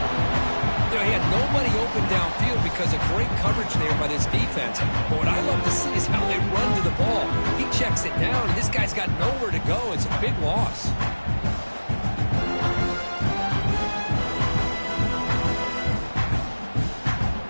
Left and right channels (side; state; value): both; inverted; correlation -1.00